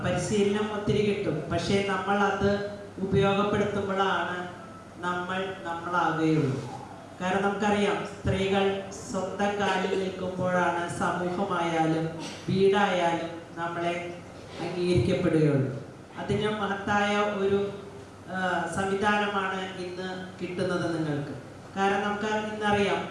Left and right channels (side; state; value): both; identical; correlation 1.00